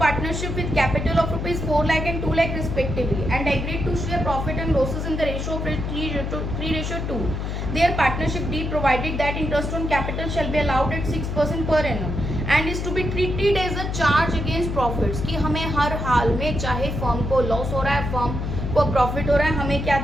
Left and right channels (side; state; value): left; noise; hum, 3 dB below the sound